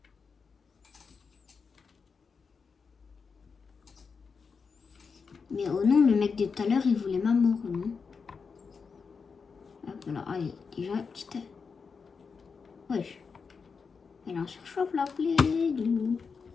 Mais oh non, le mec de tout à l'heure, il voulait ma mort, non? Hop, alors, allez, déjà, petite... Wesh. Elle en surchauffe la plaie, d'où?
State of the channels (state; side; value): quieter; right; 5.4 dB